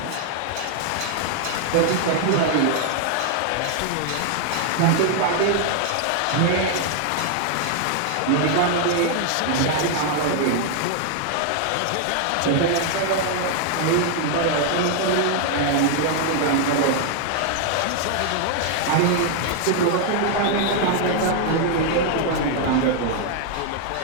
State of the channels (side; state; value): both; different; correlation 0.00